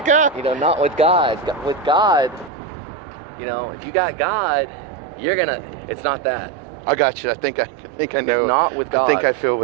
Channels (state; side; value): drops out; left; at 2.5 s